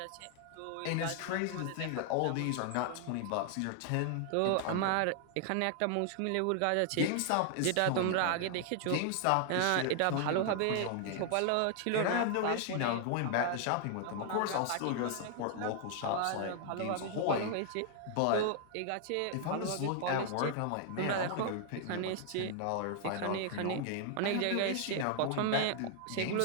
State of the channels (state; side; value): different; both; correlation 0.00